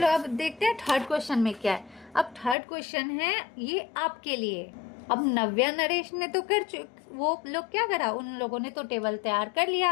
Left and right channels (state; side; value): drops out; right; at 2.6 s